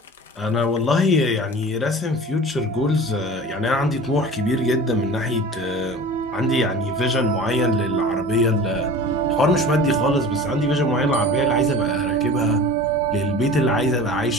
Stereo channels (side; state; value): both; normal; correlation 0.39